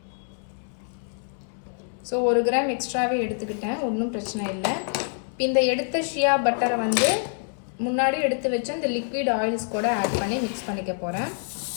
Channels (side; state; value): right; silent; 61 dB below the other